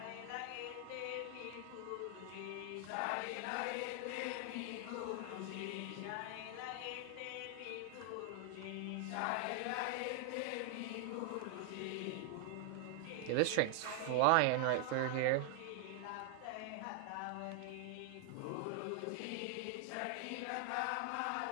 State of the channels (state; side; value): different; both; correlation 0.00